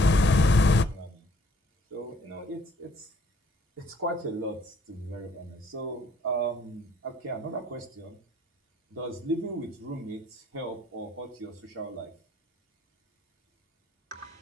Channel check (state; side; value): normal; both; correlation 0.62